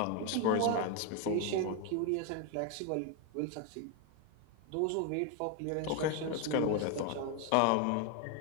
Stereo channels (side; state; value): both; different; correlation 0.01